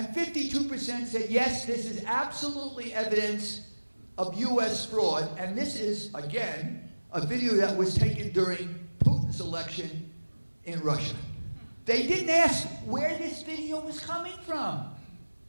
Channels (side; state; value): both; inverted; correlation -1.00